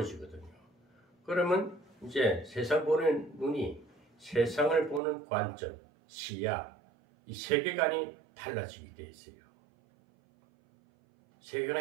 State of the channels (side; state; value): left; drops out; at 5.0 s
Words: 그러면 이제 세상 보는 눈이 세상을 보는 관점, 시야, 이 세계관이 달라지게 돼 있어요.